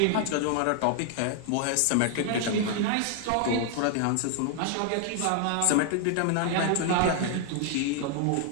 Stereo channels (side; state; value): both; different; correlation 0.00